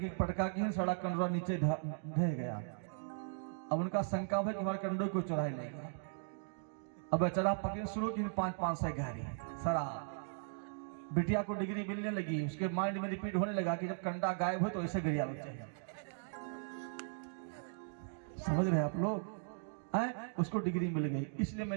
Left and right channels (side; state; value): left; silent; digital silence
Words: के सड़ा कंडोरा नीचे ढह गया। अब उनका शंका है कि हमारे कंडो को चुरा लेगा। अब बेचारा पकड़ शुरू की 5-5 से गहरी शराब, बिटिया को डिग्री मिलने लगी, उसके माइंड में रिपीट होने लगा कि जब कंडा गायब हो तो ऐसे गिरिया लग चाहिए। समझ रहे आप लोग? उसको डिग्री मिल गई। इसलिए मैं